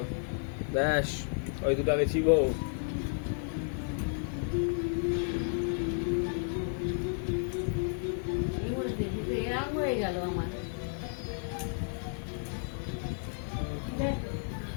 ব্যাস ওই দুটো আগে ছিবো এই বলেছে কিন্তু এরকম হয়ে গেল আমার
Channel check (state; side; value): silent; right; 56 dB below the other